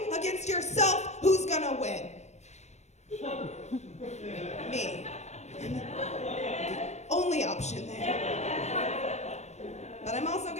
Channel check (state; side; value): late; right; 0.32 ms